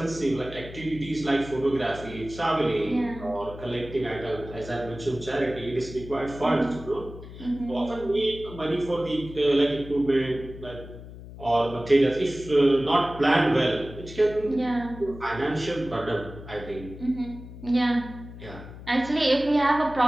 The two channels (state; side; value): noise; left; hum, 14 dB below the sound